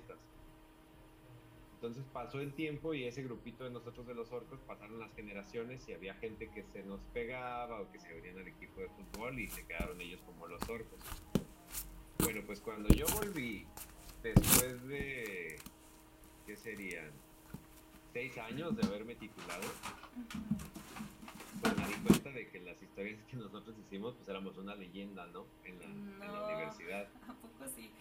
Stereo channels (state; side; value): identical; both; correlation 1.00